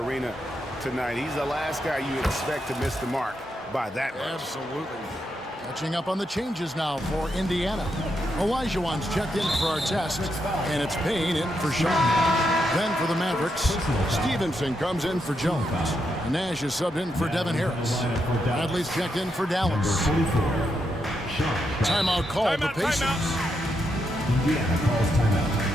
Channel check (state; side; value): normal; both; correlation 0.82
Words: tonight. He's the last guy you expect to miss the mark by that much. Absolutely. Catching up on the changes now for Indiana. Olajuwon's checked in for our test, and it's Payne in for Shaw. Then for the Mavericks, Stevenson comes in for Jones. Nash is subbed in for Devin Harris. Bradley's checked in for Dallas. Timeout called the Pacers. Indiana calls timeout.